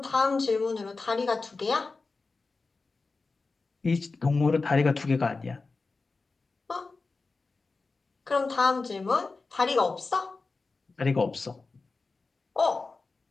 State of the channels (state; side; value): quieter; right; 3.9 dB